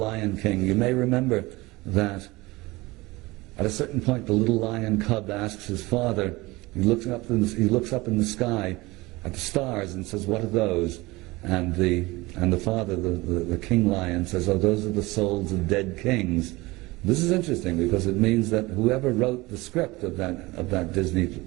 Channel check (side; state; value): left; quieter; 21.6 dB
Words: King. You may remember that at a certain point the little lion cub asks his father, he looks up in the sky at the stars and says, "What are those?" And the father, the king lion, says, "Oh, those are the souls of dead kings." This is interesting because it means that whoever wrote the script of that Disney